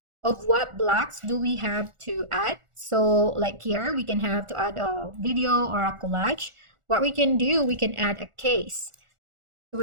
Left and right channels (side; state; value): left; late; 1.4 ms